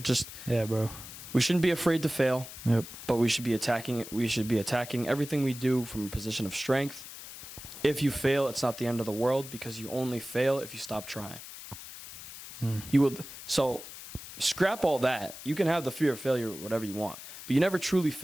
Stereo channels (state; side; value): noise; left; hiss, 13 dB below the sound